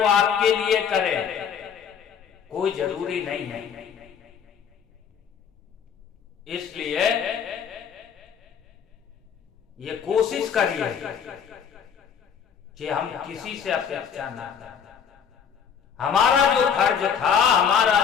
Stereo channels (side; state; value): right; quieter; 7.5 dB